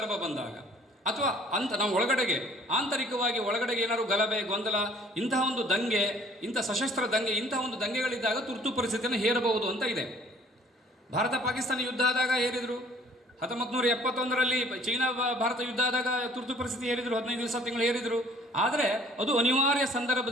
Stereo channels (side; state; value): both; normal; correlation 0.55